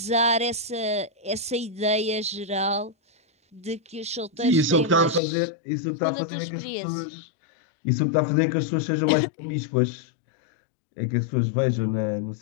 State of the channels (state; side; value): drops out; right; at 5.2 s